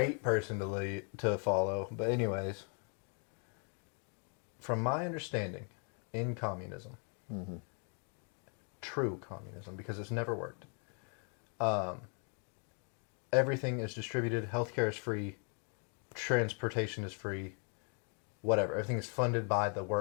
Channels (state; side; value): quieter; right; 40.0 dB